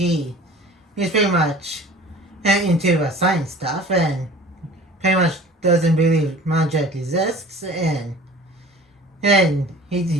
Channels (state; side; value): normal; both; correlation 0.44